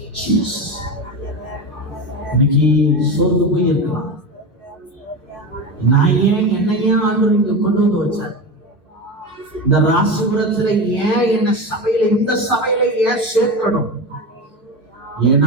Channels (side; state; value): both; normal; correlation 0.22